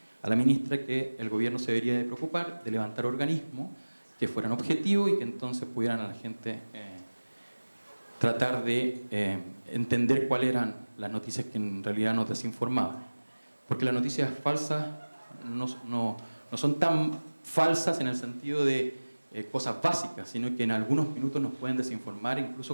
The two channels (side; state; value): both; inverted; correlation -1.00